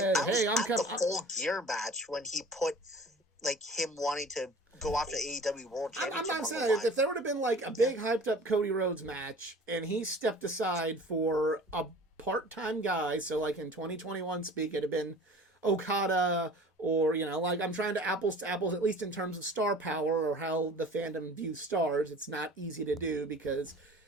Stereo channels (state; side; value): normal; both; correlation 0.44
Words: "Hey, I'm coming," the Full Gear match when he put like him wanting to go after AEW World Championship. I'm not saying if there would have been like a big hyped up Cody Rhodes match and he stepped aside for a part-time guy, so like in 2021 speak, it'd have been Okada, or like, I'm trying to apples, at least in terms of star power or how the fandom views stars. It's not easy to do because